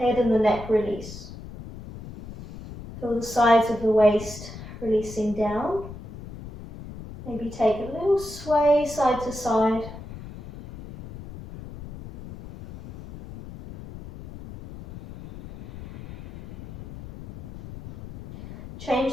and the neck release. Feel the sides of the waist releasing down. Maybe take a little sway side to side. Change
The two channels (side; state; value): left; noise; rumble, 14 dB below the sound